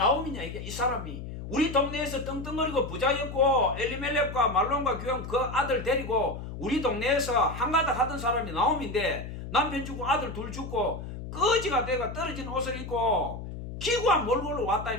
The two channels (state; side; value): noise; left; hum, 9 dB below the sound